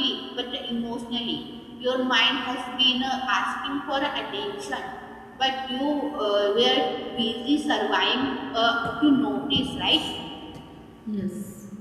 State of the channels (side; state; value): both; identical; correlation 1.00